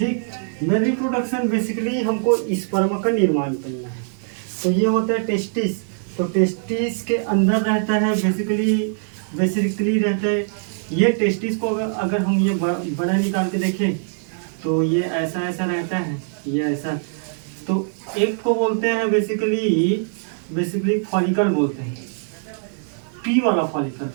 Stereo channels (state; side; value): silent; left; 64 dB below the other